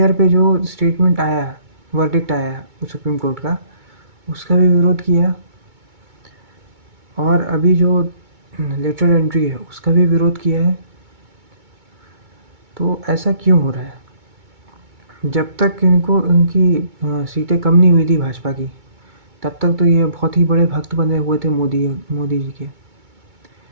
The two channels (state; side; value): late; left; 2.2 ms